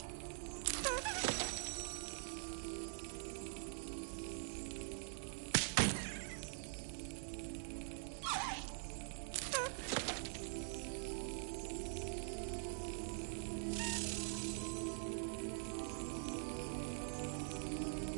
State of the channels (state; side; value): silent; left; digital silence